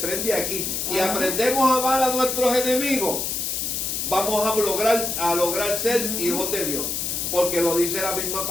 aquí. Si aprendemos a amar a nuestros enemigos, vamos a lograr ser hijos de Dios. Porque lo dice la misma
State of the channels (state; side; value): noise; left; hiss, 2 dB below the sound